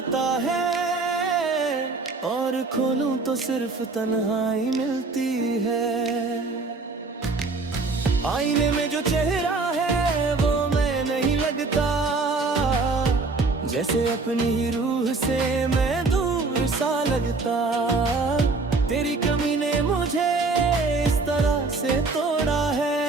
है, और खोलूं तो सिर्फ तन्हाई मिलती है। आईने में जो चेहरा है वो मैं नहीं लगता, जैसे अपनी ही रूह से मैं दूर सा लगता। तेरी कमी ने मुझे इस तरह से तोड़ा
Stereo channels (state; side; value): quieter; left; 3.8 dB